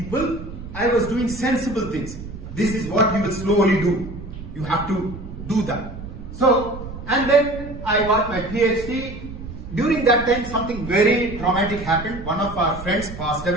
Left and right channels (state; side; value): noise; right; rumble, 11 dB below the sound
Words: I was doing sensible things. This is what you will slowly do. You have to do that. So, and then I got my PhD. During that time, something very traumatic happened. One of our friends passed